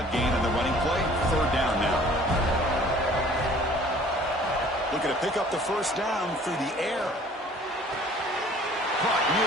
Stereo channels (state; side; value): normal; both; correlation 0.52